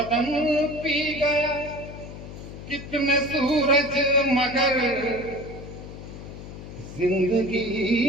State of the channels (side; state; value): left; noise; hum, 12 dB below the sound